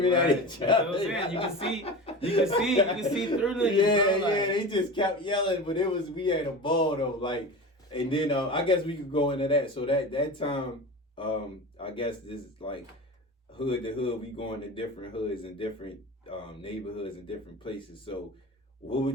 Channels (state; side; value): normal; both; correlation 0.30